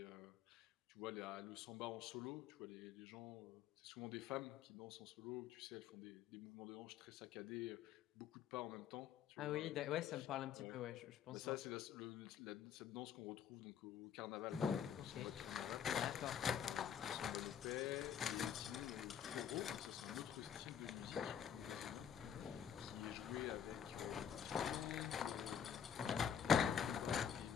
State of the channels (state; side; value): quieter; right; 8.3 dB